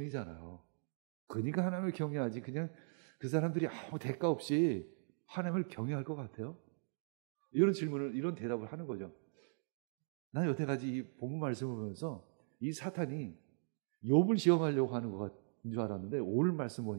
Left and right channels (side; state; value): left; silent; digital silence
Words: 그러니까 하나님을 경외하지. 그냥 그 사람들이 아무 대가 없이 하나님을 경외할 것 같아요? 이런 질문을, 이런 대답을 하는 거죠. 난 여태까지 이 본문 말씀을 보면서 이 사탄이 욥을 시험하려고 하는 것 같은 줄 알았는데 오늘 말씀